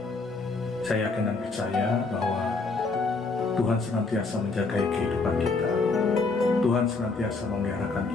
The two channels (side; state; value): right; quieter; 3.9 dB